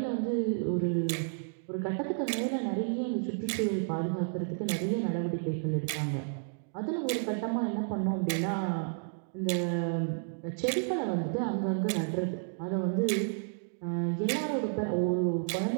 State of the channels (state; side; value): silent; left; digital silence